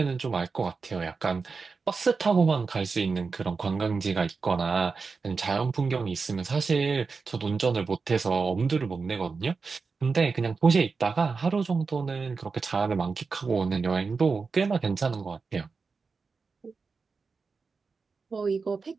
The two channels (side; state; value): left; quieter; 4.7 dB